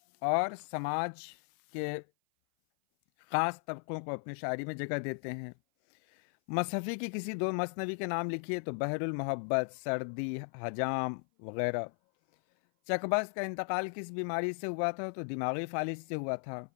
और समाज के ख़ास तबकों को अपनी शायरी में जगह देते हैं। मसहफ़ी की किसी दो मसनवी के नाम लिखिए, तो बहरुल मोहब्बत, सर्दी, हजाम वगैरह। चकबस का इंतकाल किस बीमारी से हुआ था? तो दिमागी फालिज से हुआ था।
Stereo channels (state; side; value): silent; right; 54 dB below the other